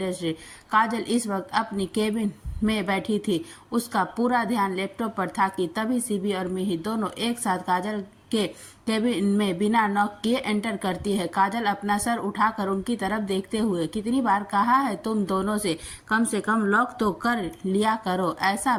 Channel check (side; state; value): both; identical; correlation 1.00